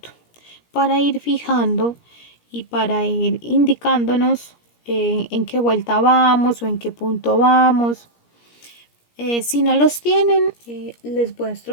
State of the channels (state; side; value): late; right; 17 ms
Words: para ir fijando y para ir indicándonos en qué vuelta vamos o en qué punto vamos. Si no los tienen, les